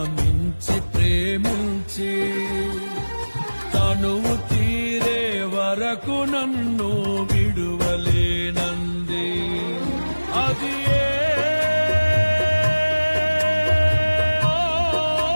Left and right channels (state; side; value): inverted; both; correlation -1.00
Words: మించి ప్రేమించి తనువు తీరే వరకు నన్ను విడువలేనంది. అది